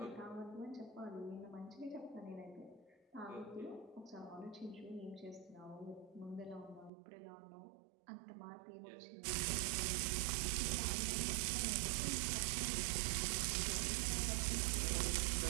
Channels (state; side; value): drops out; left; at 6.9 s